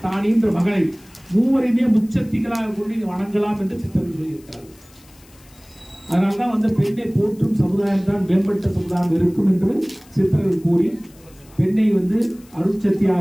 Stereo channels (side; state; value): left; noise; hiss, 27 dB below the sound